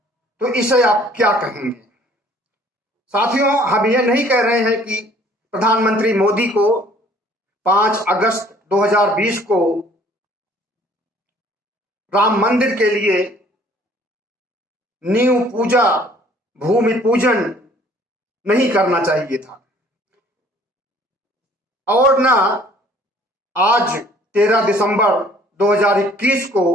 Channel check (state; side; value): normal; both; correlation 0.56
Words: तो इसे आप क्या कहेंगे? साथियों, हम ये नहीं कह रहे हैं कि प्रधानमंत्री मोदी को 5 अगस्त 2020 को राम मंदिर के लिए नींव पूजा, भूमि पूजन नहीं करना चाहिए था, और ना आज 13 दिसंबर 2021 को